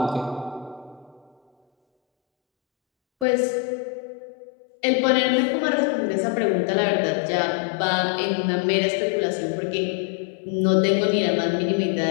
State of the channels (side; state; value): right; drops out; at 3.2 s